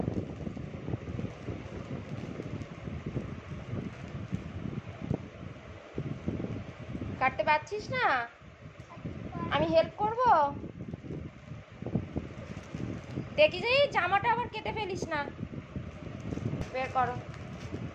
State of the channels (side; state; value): both; identical; correlation 1.00